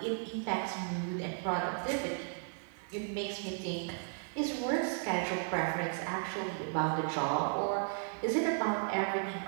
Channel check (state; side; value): silent; left; 54 dB below the other